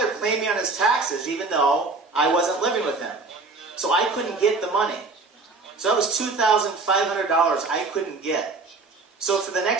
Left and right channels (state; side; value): quieter; left; 3.8 dB